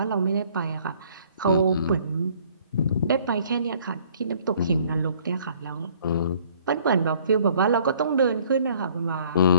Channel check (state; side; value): inverted; both; correlation -0.58